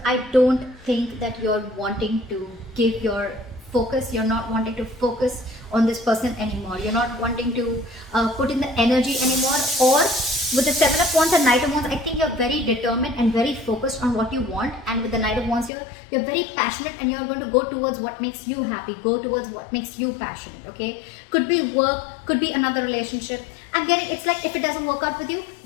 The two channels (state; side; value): drops out; right; at 15.7 s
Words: I don't think that you're wanting to give your focus. You're not wanting to focus on this person anymore. You're not wanting to put in the energy anymore. Or with the Seven of Wands and Knight of Wands, I think you're very determined and very focused on what you want. And with the Knight of Wands here, you're very passionate, and you're going to go towards what makes you happy. Go towards what makes you passionate, okay? Could be work, could be another relationship. I'm getting, it's like if it doesn't work out with you,